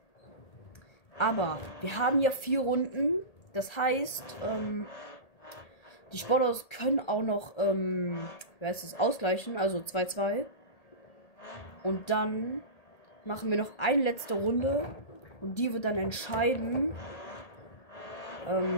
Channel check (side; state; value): right; late; 1.8 ms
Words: Aber wir haben ja 4 Runden. Das heißt, die Sportautos können auch noch, ausgleichen, also 2-2. Und dann machen wir noch eine letzte Runde. Und die wird dann entscheiden,